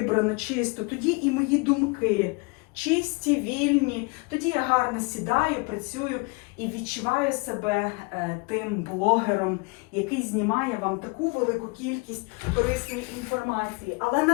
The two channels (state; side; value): quieter; right; 29.1 dB